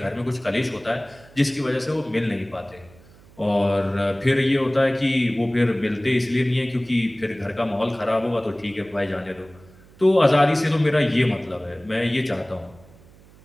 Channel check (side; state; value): right; noise; hum, 25 dB below the sound